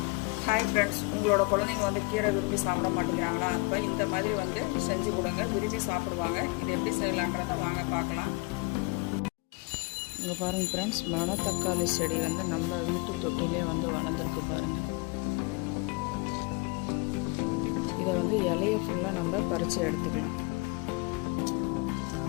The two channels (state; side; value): quieter; right; 27.0 dB